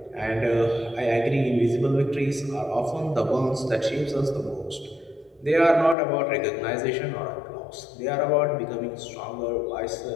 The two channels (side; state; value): right; drops out; at 6.0 s